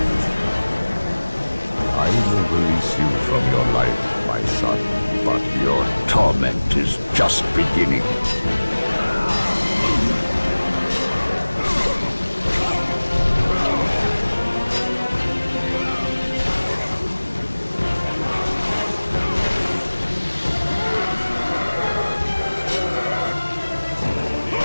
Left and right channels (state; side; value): inverted; both; correlation -1.00